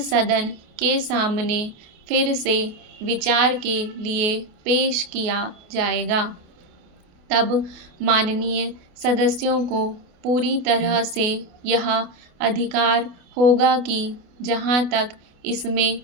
सदन के सामने फिर से विचार के लिए पेश किया जाएगा। तब माननीय सदस्यों को पूरी तरह से यह अधिकार होगा कि जहाँ तक इसमें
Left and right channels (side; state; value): left; late; 28 ms